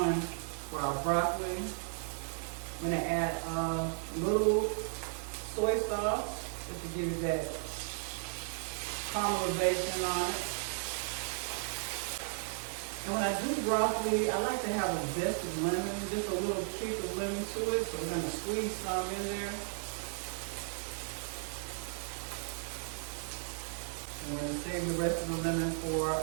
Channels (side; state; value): left; silent; 54 dB below the other